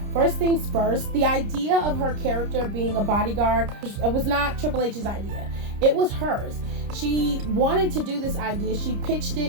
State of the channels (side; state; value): left; late; 30 ms